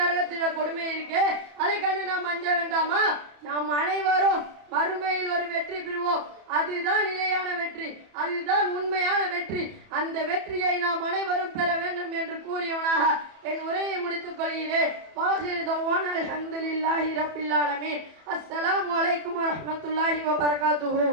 கொடுமை இருக்கு. அதை கண்டு நாம் அஞ்ச வேண்டாமா? நாம் அனைவரும் மறுமையில் ஒரு வெற்றி பெறுவோம். அதுதான் நிலையான வெற்றி, அதுதான் உண்மையான வெற்றி. அந்த வெற்றியை நாம் அனைவரும் பெற வேண்டும் என்று கூறியவனாக என் உரையை முடித்துக் கொள்கிறேன். வாஹிர் தவானா அல்ஹம்துலில்லாஹி ரப்பில் ஆலமீன். அஸ்ஸலாமு அலைக்கும் வரஹ்மத்துல்லாஹி வபரகாத்துஹு.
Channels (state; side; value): late; left; 31 ms